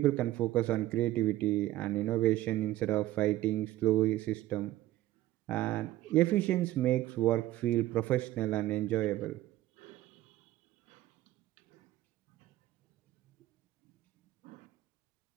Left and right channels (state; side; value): quieter; left; 15.3 dB